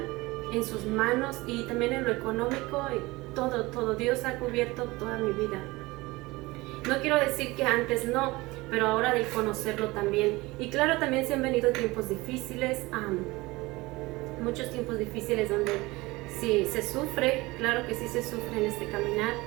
en sus manos, y también en lo económico, y todo. Dios ha cubierto toda mi vida. No quiero decir que antes no, pero ahora de conocerlo también. Y claro, también se han venido tiempos difíciles, muchos tiempos difíciles donde sí se sufre, claro que sí se sufre en este caminar,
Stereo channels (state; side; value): quieter; left; 21.6 dB